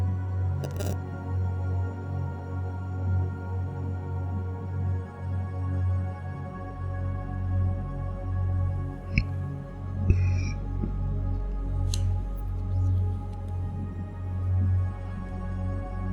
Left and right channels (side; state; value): both; identical; correlation 1.00